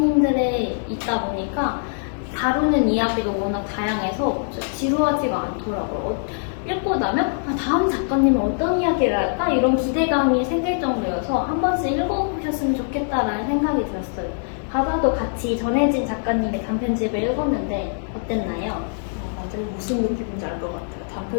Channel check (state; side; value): silent; right; digital silence